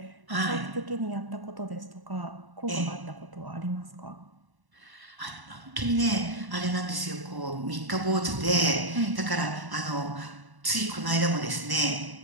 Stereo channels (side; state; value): left; late; 1.0 ms